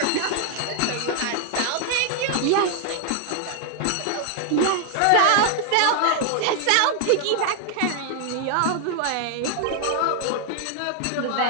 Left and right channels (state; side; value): different; both; correlation 0.00